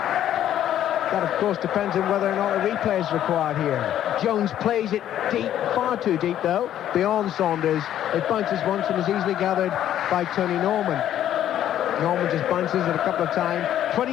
That, of course, depends on whether or not a replay is required here. Jones plays it deep, far too deep, though, beyond Saunders. It bounces once and is easily gathered by Tony Norman. Norman just bounces it a couple of times.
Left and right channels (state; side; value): quieter; right; 11.3 dB